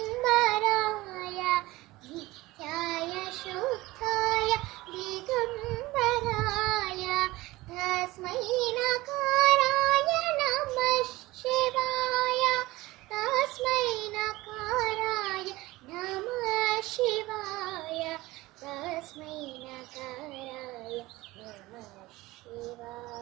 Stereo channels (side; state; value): left; quieter; 19.5 dB